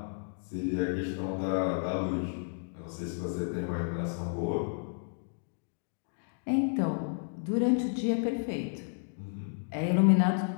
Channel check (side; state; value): right; silent; digital silence